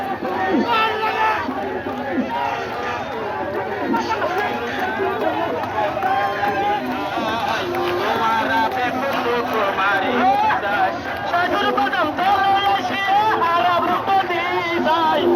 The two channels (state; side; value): identical; both; correlation 1.00